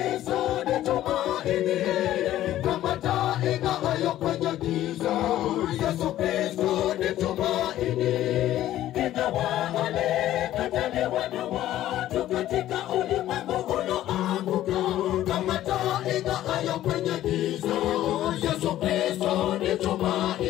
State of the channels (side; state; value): right; quieter; 13.4 dB